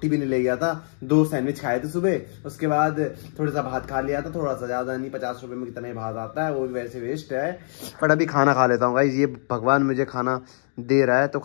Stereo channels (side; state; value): right; silent; 60 dB below the other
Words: भी नहीं ले गया था, 2 सैंडविच खाए थे सुबह, उसके बाद थोड़ा सा भात खा लिया था, थोड़ा सा ज्यादा नहीं, 50 रुपए में कितना ही भात आता है, वो भी वैसे वेस्ट है। बट अभी खाना खा लेता हूँ भाई, ये भगवान मुझे खाना दे रहा है तो